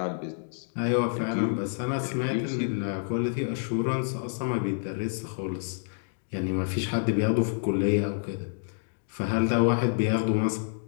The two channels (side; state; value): right; silent; digital silence